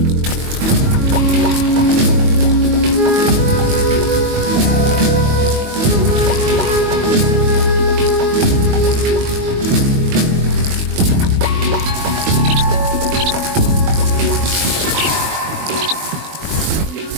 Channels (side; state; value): left; late; 22 ms